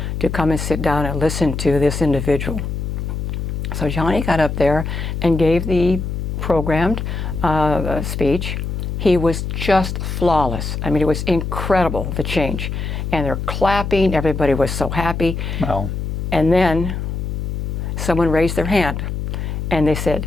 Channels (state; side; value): noise; left; hum, 3 dB below the sound